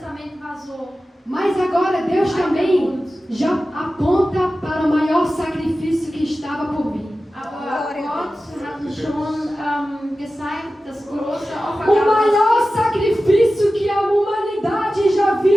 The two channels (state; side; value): normal; both; correlation 0.94